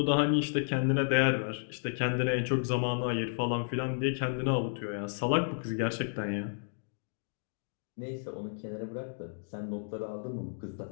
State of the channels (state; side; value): silent; right; digital silence